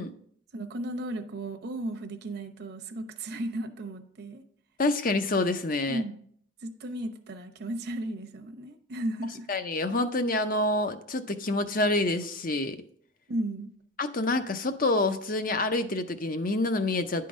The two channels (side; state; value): both; normal; correlation 0.31